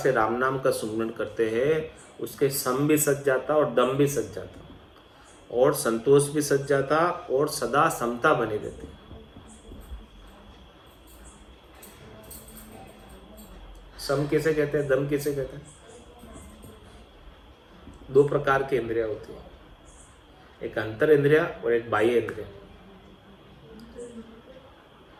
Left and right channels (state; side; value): identical; both; correlation 1.00